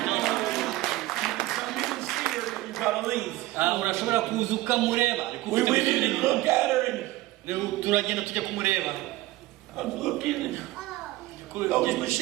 urashobora kuza ukamureba. We went in and looked at her and turagenda tujya kumureba. I was looking and those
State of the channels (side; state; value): left; quieter; 17.7 dB